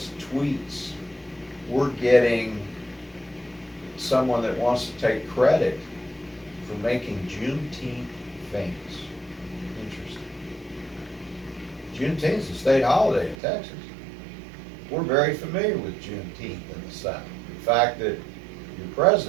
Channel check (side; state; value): left; drops out; at 13.4 s